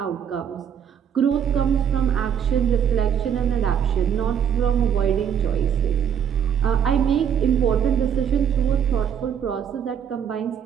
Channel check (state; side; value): quieter; left; 8.5 dB